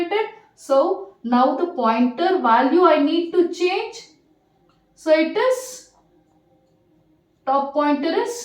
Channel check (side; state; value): both; identical; correlation 1.00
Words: So now the pointer value I need to change. So it is top pointer